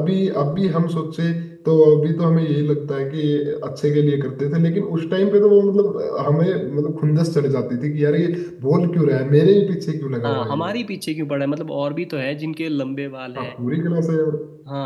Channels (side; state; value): both; identical; correlation 1.00